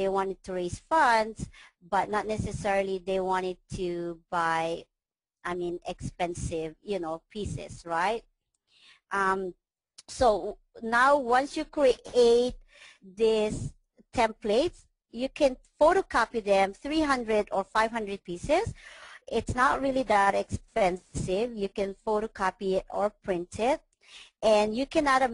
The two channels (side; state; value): both; identical; correlation 1.00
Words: wanted to raise funds, but not necessarily they wanted to buy, I mean, expensive, you know, pieces, right? So now once you create these templates, you can photocopy them, 300 or 500 pieces. It's not really that expensive. You can photocopy it or print it. And you can add a